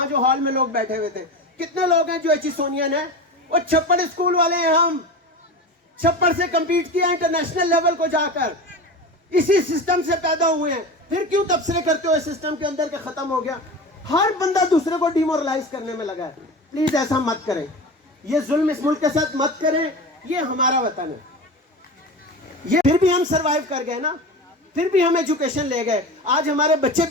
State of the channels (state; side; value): normal; both; correlation 0.28